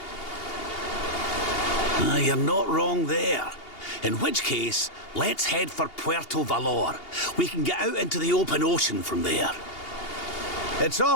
You're not wrong there. In which case, let's head for Puerto Valor. We can get out into the open ocean from there. It's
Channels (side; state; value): right; late; 2.8 ms